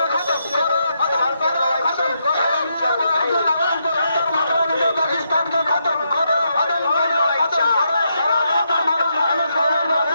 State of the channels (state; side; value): inverted; both; correlation -0.80